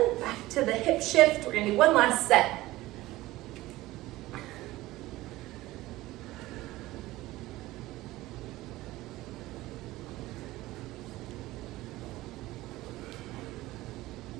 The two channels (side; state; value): left; quieter; 17.7 dB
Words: Back to the hip shift. We're gonna do one last set.